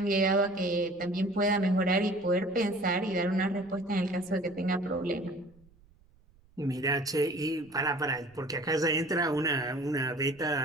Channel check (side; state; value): right; noise; rumble, 30 dB below the sound